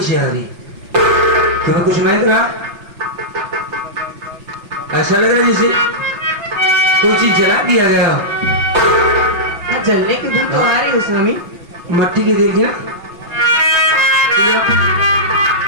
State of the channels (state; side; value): late; left; 5.8 ms